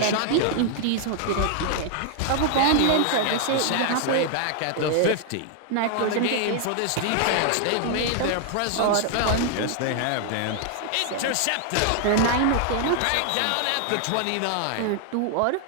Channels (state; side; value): different; both; correlation 0.00